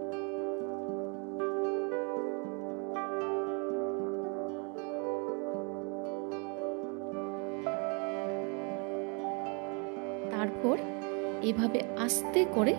তারপর এভাবে আস্তে করে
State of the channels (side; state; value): left; quieter; 35.0 dB